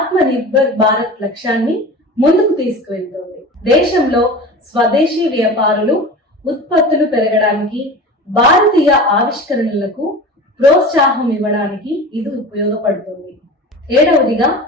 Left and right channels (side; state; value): both; normal; correlation 0.34